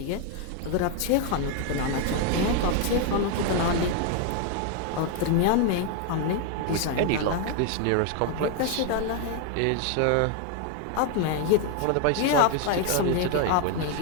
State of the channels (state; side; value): different; both; correlation 0.01